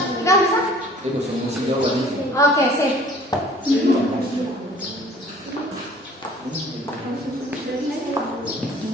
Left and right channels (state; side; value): normal; both; correlation 0.51